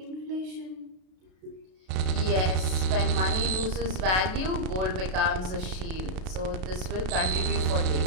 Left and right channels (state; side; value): late; left; 32 ms